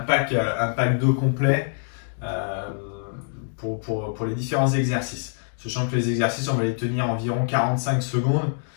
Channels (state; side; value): silent; right; digital silence